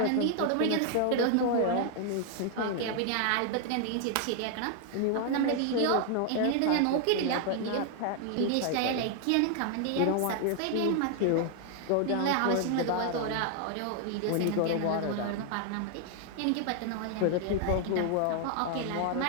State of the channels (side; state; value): both; different; correlation 0.00